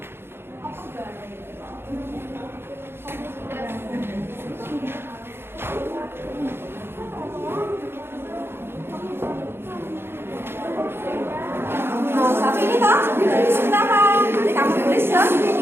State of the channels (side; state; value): left; late; 0.11 ms